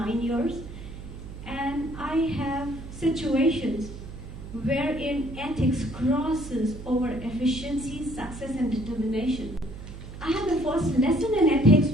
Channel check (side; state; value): right; noise; hum, 12 dB below the sound